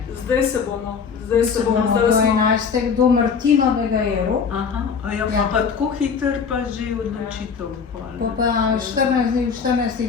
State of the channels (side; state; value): right; quieter; 6.0 dB